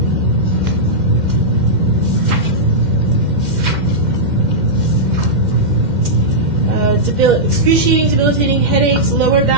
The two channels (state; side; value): late; left; 2.1 ms